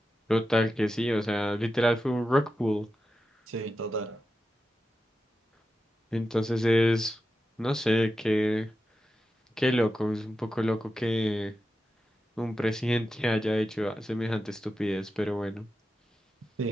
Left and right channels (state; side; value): normal; both; correlation 0.90